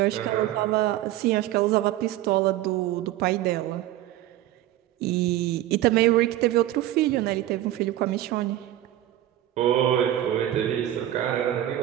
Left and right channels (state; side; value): quieter; left; 13.7 dB